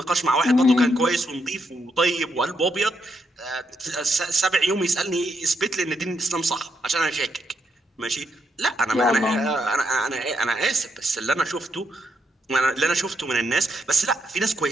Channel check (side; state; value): both; normal; correlation 0.79